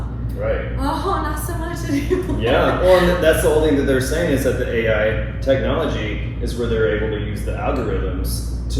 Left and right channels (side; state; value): both; identical; correlation 1.00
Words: Right. Oh, not so much anymore. Yeah, well, and that's the whole thing that they're saying is that the AI technology is where they're able to use the algorithms